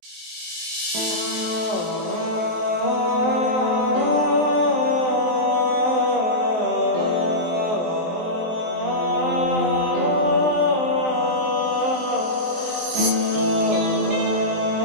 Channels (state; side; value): late; left; 23 ms